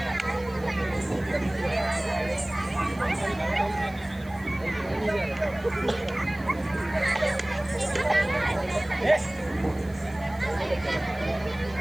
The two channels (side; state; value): right; noise; hiss, 25 dB below the sound